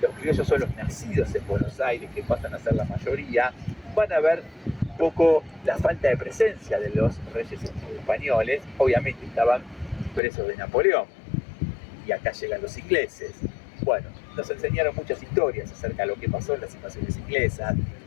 criollos son los nacidos en Buenos Aires, que pasan a ser la mayoría, van a ver un poco la falta de presencia de los reyes españoles. Obviamente estaban presos de Napoleón, y acá llegan los ingleses. Bueno, nos enseñaron muchas historias acerca de lo que pasó en las invasiones inglesas.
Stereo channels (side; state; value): right; drops out; at 10.2 s